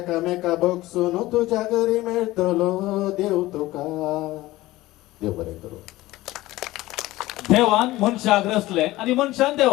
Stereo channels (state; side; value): quieter; right; 17.7 dB